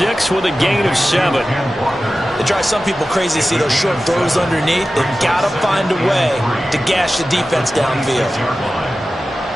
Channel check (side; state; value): both; normal; correlation 0.94